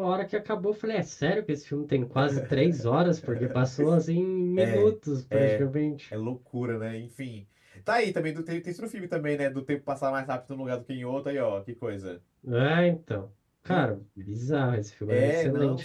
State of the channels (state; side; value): identical; both; correlation 1.00